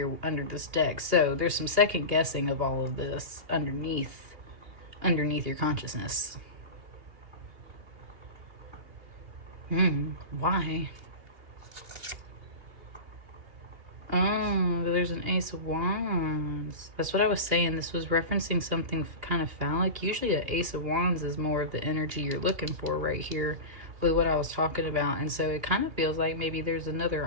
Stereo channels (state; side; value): late; left; 2.6 ms